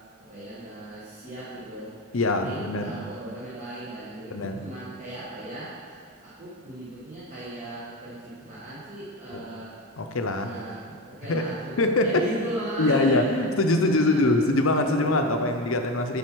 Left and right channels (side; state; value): both; normal; correlation 0.20